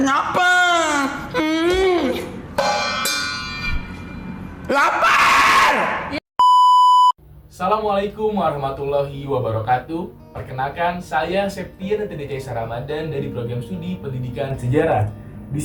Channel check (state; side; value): identical; both; correlation 1.00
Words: nyapa. Lapar. Assalamualaikum warahmatullahi wabarakatuh. Perkenalkan, saya Septian TDC Ramadan dari program studi Pendidikan Sejarah. Di